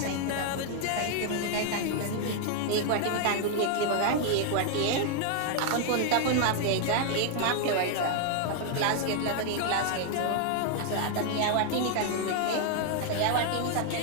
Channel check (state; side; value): different; both; correlation 0.00